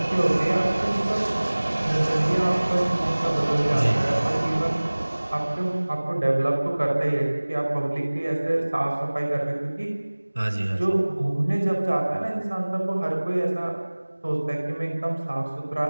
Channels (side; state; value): both; inverted; correlation -1.00